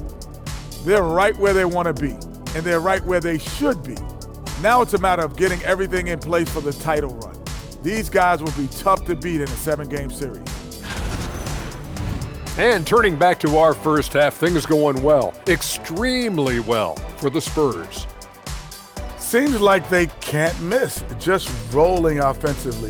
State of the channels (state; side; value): identical; both; correlation 1.00